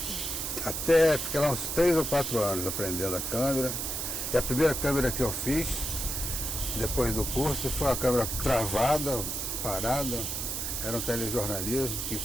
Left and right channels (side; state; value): right; noise; hiss, 3 dB below the sound